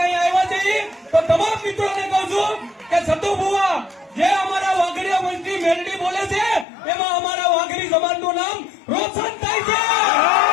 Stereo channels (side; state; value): right; drops out; at 6.7 s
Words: આવ્યા છીએ. તો તમામ મિત્રોને કહું છું કે સતુ બુઆ જે અમારા વાઘરિયા વંશની મેલડી બોલે છે એમાં અમારા વાઘરી સમાજનું નામ રોશન થાય છે.